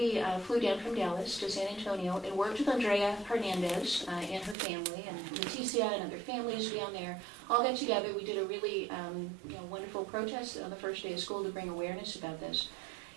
flew down from Dallas to San Antonio and worked with Andrea Hernandez and her family, and Leticia and other families down there. All got together. We did a really wonderful protest on the first day of school to bring awareness about this.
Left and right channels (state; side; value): drops out; left; at 4.5 s